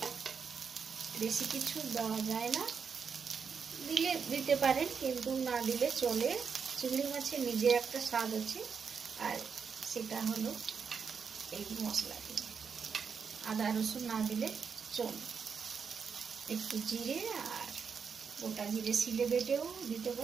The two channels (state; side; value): quieter; left; 6.2 dB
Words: বেশি কিছু দেওয়া যায় না, দিলে দিতে পারেন কিন্তু না দিলে চলে। চিংড়ি মাছের নিজের একটা স্বাদ আছে, আর সেটা হলো এই মশলা দিয়ে। আদা রসুন না দিলে চলে। একটু জিরে আর গোটা জিরে শিলে বেটেও দিতে